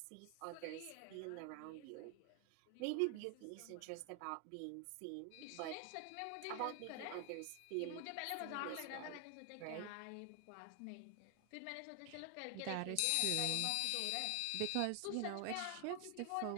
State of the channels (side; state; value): both; different; correlation 0.00